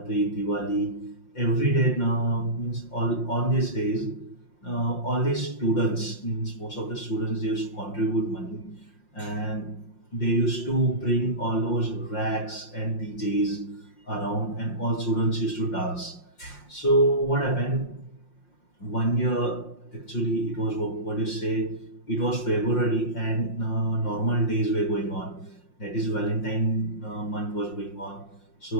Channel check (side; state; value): right; late; 5.6 ms